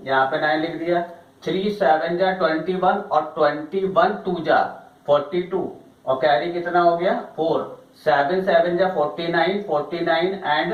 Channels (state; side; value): identical; both; correlation 1.00